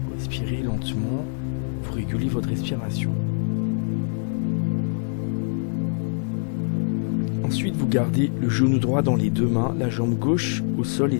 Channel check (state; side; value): silent; right; digital silence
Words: Vous respirez lentement, vous régulez votre respiration. Ensuite, vous gardez le genou droit dans les deux mains, la jambe gauche au sol